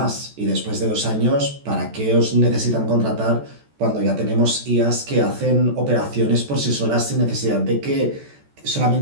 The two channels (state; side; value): late; left; 14 ms